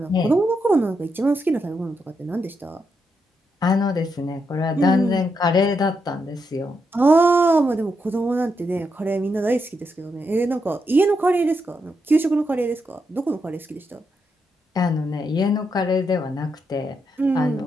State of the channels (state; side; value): normal; both; correlation 0.82